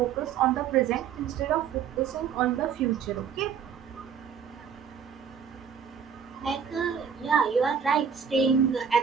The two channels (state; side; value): quieter; left; 7.2 dB